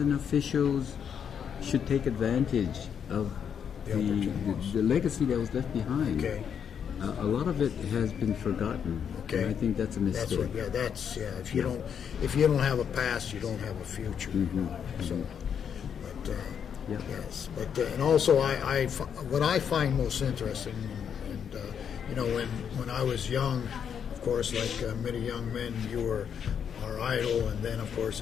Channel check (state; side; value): quieter; right; 7.8 dB